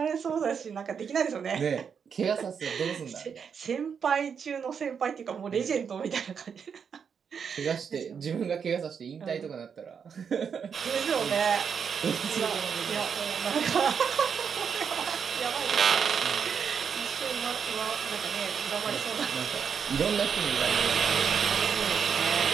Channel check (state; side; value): quieter; left; 6.8 dB